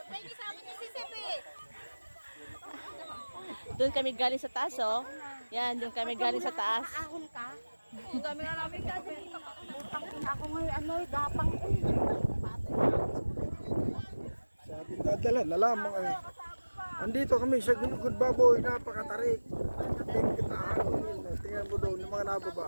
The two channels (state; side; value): inverted; both; correlation -1.00